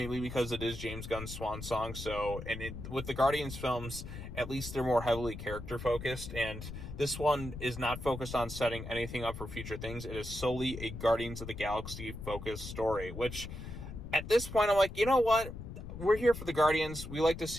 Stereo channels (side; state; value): left; noise; rumble, 9 dB below the sound